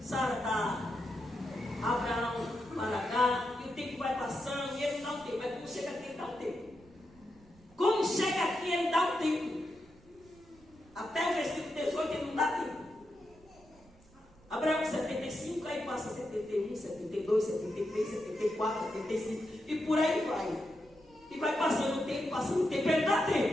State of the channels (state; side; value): noise; right; rumble, 27 dB below the sound